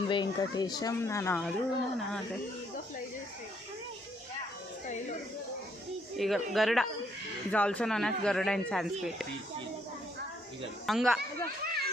వెంకటేశం నానాడు నానాడు. Eagle Garuda is also known as Garuda in Sanskrit.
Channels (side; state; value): both; normal; correlation 0.70